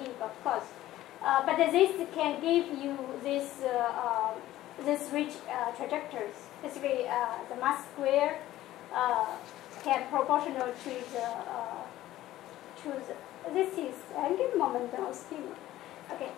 of course. But this can give you this rich trajectories. Basically, the mass square can proportional to the this is angular momentum of spin. Okay.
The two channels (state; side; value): quieter; right; 14.7 dB